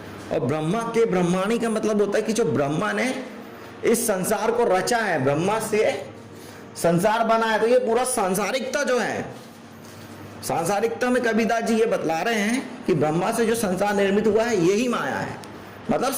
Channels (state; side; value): identical; both; correlation 1.00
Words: और ब्रह्मा के ब्रह्माणी का मतलब होता है कि जो ब्रह्मा ने इस संसार को रचा है, ब्रह्मा से संसार बना है, तो ये पूरा सांसारिकता जो है, सांसारिकता में कबीरदास जी ये बतला रहे हैं कि ब्रह्मा से जो संसार निर्मित हुआ है यही माया है, मतलब